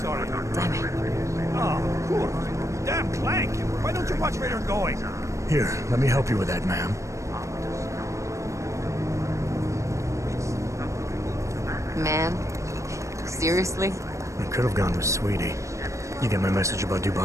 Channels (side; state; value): left; late; 0.15 ms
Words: Damn it. Oh, cool. Damn Clank. Why don't you watch where you're going? Here, let me help you with that, ma'am. Man, seriously? I could have gone with Sweetie. You get my message about